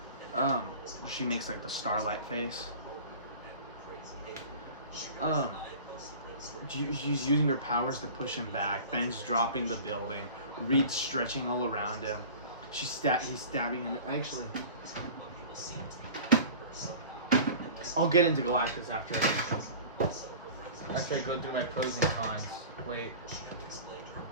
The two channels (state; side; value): inverted; both; correlation -0.40